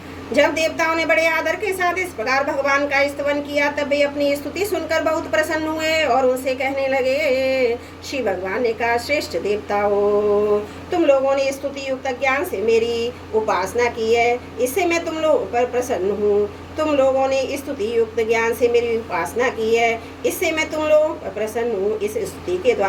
जब देवताओं ने बड़े आदर के साथ इस प्रकार भगवान का स्तवन किया, तब वे अपनी स्तुति सुनकर बहुत प्रसन्न हुए और उनसे कहने लगे। श्री भगवान ने कहा, श्रेष्ठ देवताओं, तुम लोगों ने स्तुति युक्त ज्ञान से मेरी उपासना की है, इससे मैं तुम लोगों पर प्रसन्न हूँ। तुम लोगों ने स्तुति युक्त ज्ञान से मेरी उपासना की है, इससे मैं तुम लोगों पर प्रसन्न हूँ। इस स्तुति के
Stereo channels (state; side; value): identical; both; correlation 1.00